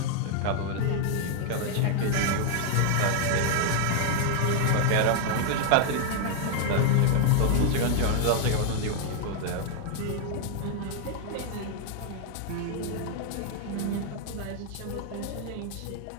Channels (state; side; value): different; both; correlation 0.00